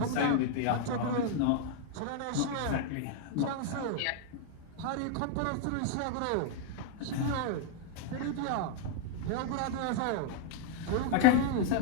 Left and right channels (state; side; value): different; both; correlation 0.00